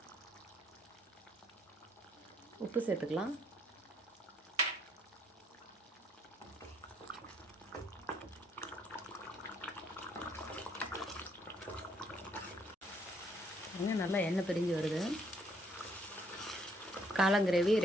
உப்பு சேர்த்துக்கலாம். நல்லா எண்ணெய் பிரிஞ்சு வருது. காளான் கிரேவி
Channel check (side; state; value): both; normal; correlation 0.68